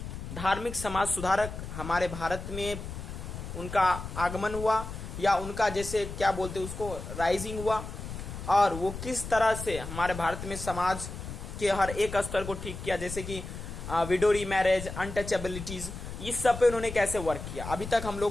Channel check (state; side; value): noise; left; rumble, 9 dB below the sound